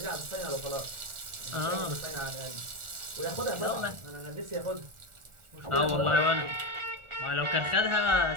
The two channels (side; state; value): left; late; 1.4 ms